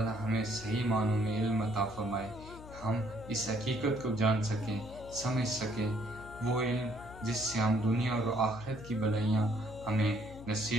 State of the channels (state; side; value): noise; left; hum, 15 dB below the sound